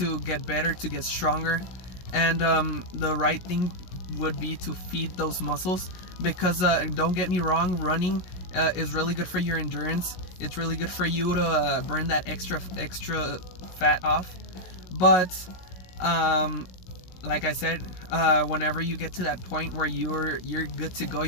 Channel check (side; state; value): right; late; 16 ms